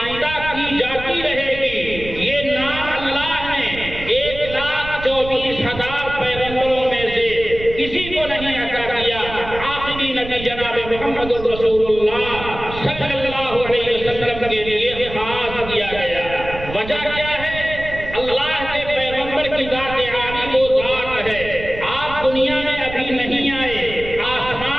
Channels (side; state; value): right; noise; rumble, 11 dB below the sound